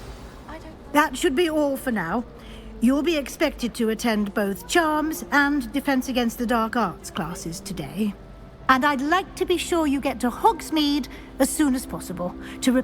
I don't... That should be all for now. You'll be expected to attend both Charms and Defense Against the Dark Arts classes today. And I'd like to be sure you get to Hogsmeade as soon as possible to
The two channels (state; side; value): identical; both; correlation 1.00